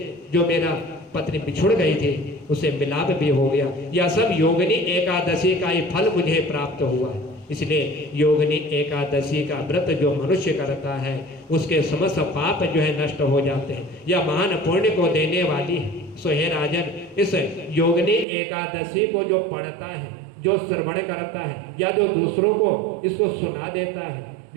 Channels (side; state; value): left; drops out; at 18.2 s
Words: जो मेरा पत्नी बिछुड़ गई थी, उसे मिलाप भी हो गया। यह सब योगिनी एकादशी का ही फल मुझे प्राप्त हुआ है। इसलिए योगिनी एकादशी का व्रत जो मनुष्य करता है, उसके समस्त पाप जो है नष्ट हो जाते हैं। यह महान पुण्य को देने वाली है। सो हे राजन, इस योगिनी एकादशी को जो पढ़ता है, जो श्रवण करता है, या जो दूसरों को इसको सुना देता है,